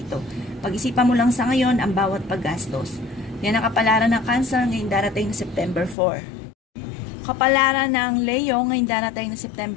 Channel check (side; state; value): right; drops out; at 6.0 s